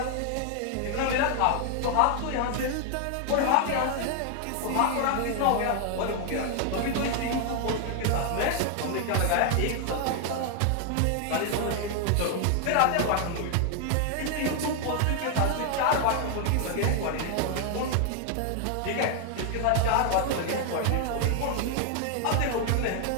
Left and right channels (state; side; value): different; both; correlation 0.00